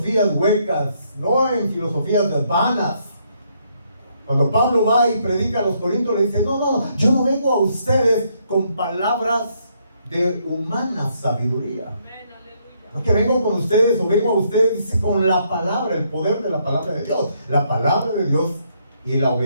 huecas, no en filosofías vanas. Cuando Pablo va y predica a los corintios, le dice: no, yo no vengo a ustedes con palabras de humana sabiduría. No que vengo con ustedes, o vengo a ustedes, dice, con la palabra, el poder de la palabra de Dios. La palabra de Dios y la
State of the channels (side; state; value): both; inverted; correlation -0.73